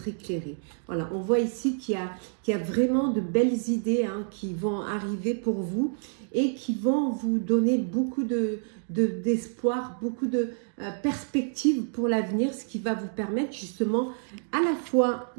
éclairé. Voilà, on voit ici qu'il y a vraiment de belles idées hein, qui vont arriver pour vous et qui vont vous donner beaucoup d'espoir, beaucoup de perspectives pour l'avenir, ce qui va vous permettre justement à la fois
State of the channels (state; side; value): silent; left; digital silence